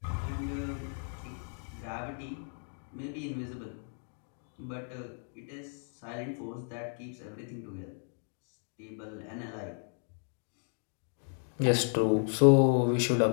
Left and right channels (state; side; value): silent; right; 55 dB below the other